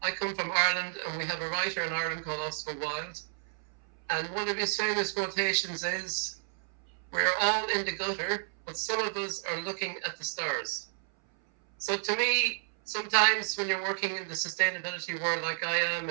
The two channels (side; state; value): left; silent; 57 dB below the other